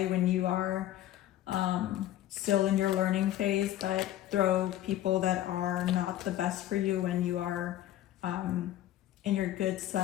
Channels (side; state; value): right; quieter; 13.3 dB